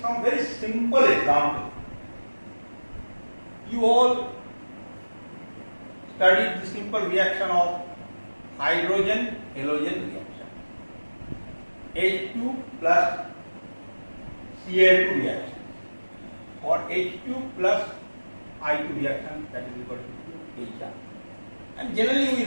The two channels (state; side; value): inverted; both; correlation -1.00